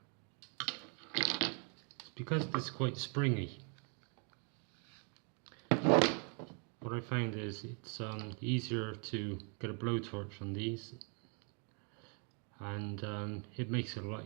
because it's quite springy, what I found is it's easier to get a blowtorch on these, and it makes it a lot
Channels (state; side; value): quieter; left; 37.9 dB